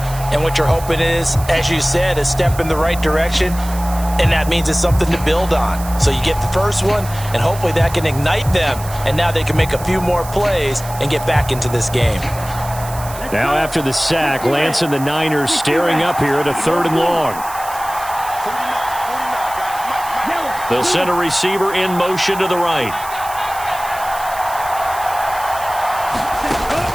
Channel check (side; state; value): right; noise; hiss, 14 dB below the sound